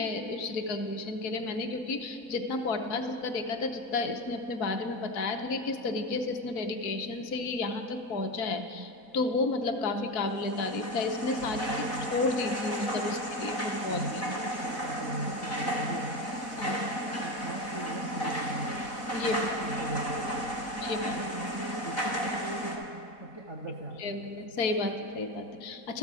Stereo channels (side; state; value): right; late; 4.1 ms